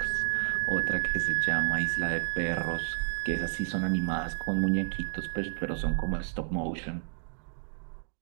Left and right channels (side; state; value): left; silent; digital silence